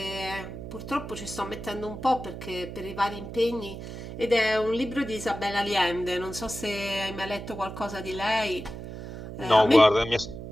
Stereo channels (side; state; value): right; noise; hum, 10 dB below the sound